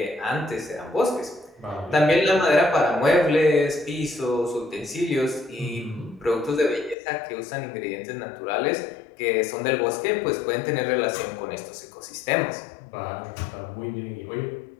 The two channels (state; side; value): drops out; right; at 7.0 s